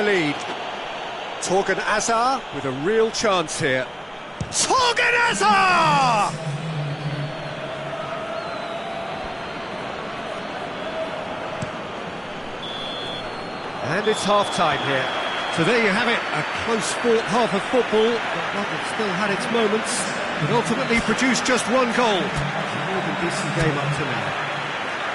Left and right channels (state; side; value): identical; both; correlation 1.00